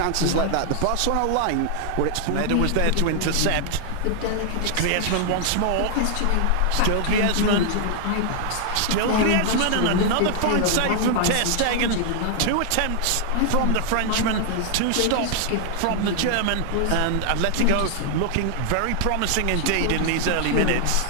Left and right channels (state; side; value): different; both; correlation 0.00